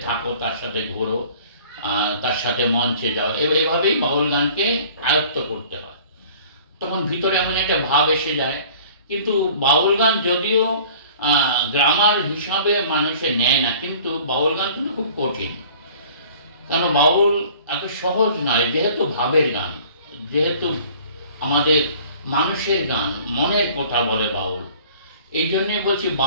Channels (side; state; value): both; inverted; correlation -0.49